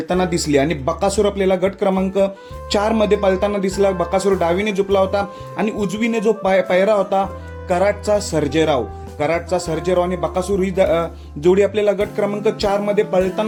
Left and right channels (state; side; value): identical; both; correlation 1.00